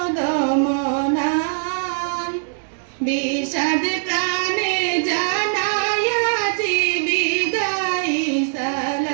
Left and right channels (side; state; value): left; silent; digital silence